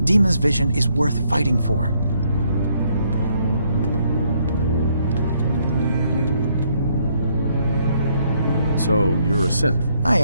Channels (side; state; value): both; inverted; correlation -0.71